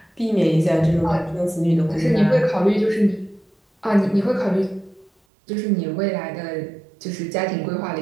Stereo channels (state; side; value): drops out; left; at 5.1 s